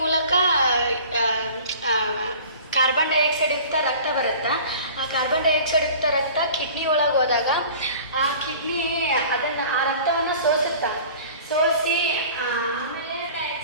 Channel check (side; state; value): both; inverted; correlation -0.44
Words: ಮೂಲಕ ಕಾರ್ಬನ್ ಡೈಆಕ್ಸೈಡ್ ಯುಕ್ತ ರಕ್ತ ಬರುತ್ತೆ. ಆ ಕಾರ್ಬನ್ ಡೈಆಕ್ಸೈಡ್ ಯುಕ್ತ ರಕ್ತ ಕಿಡ್ನಿ ಒಳಗೆ ಹೋದಾಗ ಆ ಕಿಡ್ನಿ ಆ ರಕ್ತವನ್ನು ಸೋಸಿ ಆಮೇಲೆ